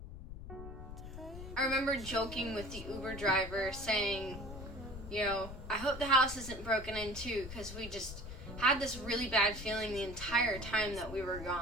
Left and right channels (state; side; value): noise; left; rumble, 11 dB below the sound